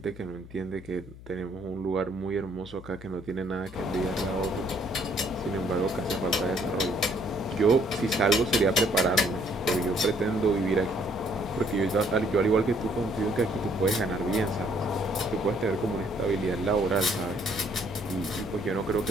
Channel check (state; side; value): noise; left; hum, 17 dB below the sound